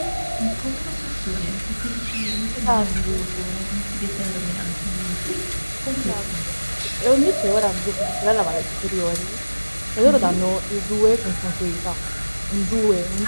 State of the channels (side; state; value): both; inverted; correlation -1.00